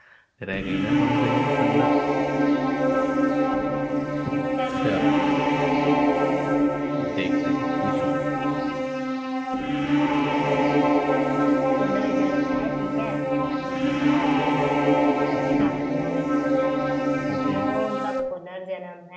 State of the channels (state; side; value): identical; both; correlation 1.00